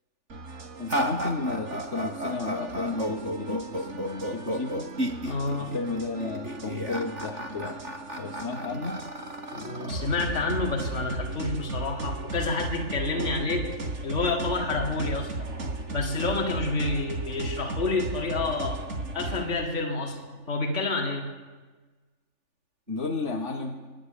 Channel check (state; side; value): late; left; 3.4 ms